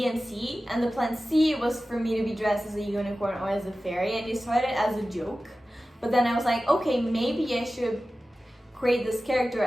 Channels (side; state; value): both; normal; correlation 0.95